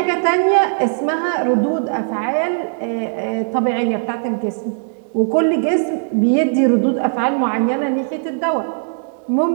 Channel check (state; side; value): silent; left; digital silence